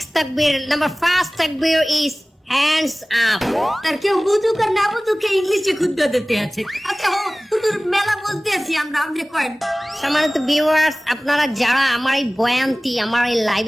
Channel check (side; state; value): both; normal; correlation 0.98